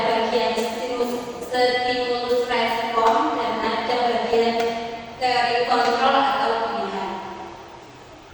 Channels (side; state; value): both; identical; correlation 1.00